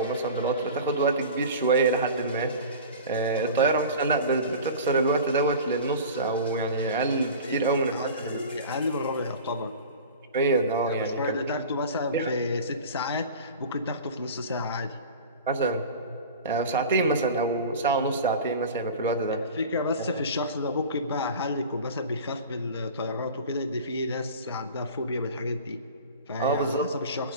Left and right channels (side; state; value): both; inverted; correlation -0.37